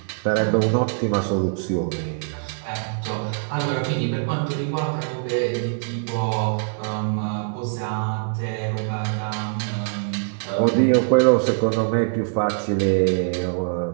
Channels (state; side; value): silent; left; 63 dB below the other